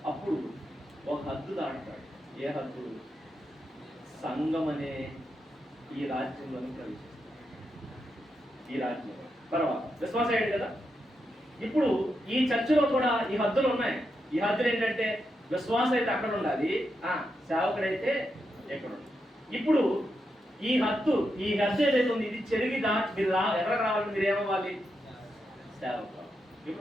అప్పుడు ఒక హద్దు దాటుతాడు. ఏ హద్దు? సంఘం అనే ఈ రాజ్యంలోని ప్రవేశిస్తాడు. ఈ రాజ్యంలో తర్వాత విశ్వాసం అయ్యాడు కదా. ఇప్పుడు ఈ చర్చిలో కూడా ఈ హద్దులు ఉన్నాయి. ఈ హద్దులు ఏంటంటే విశ్వాసం అయితే అక్కడ ఉండాలి, సేవకుడైతే ఎక్కడ ఉండాలి. ఇప్పుడు ఈ హద్దు ఏదైతే ఉంది ఇది చెరిగి దాటి మీరు ఎవరికి రావాలి? మీరు ఏమవ్వాలి? సేవకు.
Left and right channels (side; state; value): both; normal; correlation 0.84